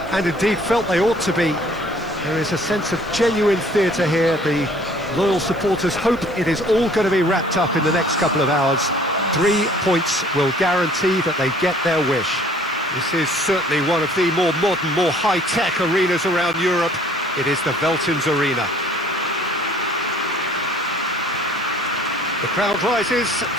and indeed felt they ought to be. There is a sense of genuine theatre here. The loyal supporters hope it is all going to be wrapped up in the next couple of hours. 3 points will guarantee that they get their wish. This is certainly one of the more modern, more high-tech arenas around Europe. It is the Veltins Arena. The crowd rises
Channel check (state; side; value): noise; right; hiss, 27 dB below the sound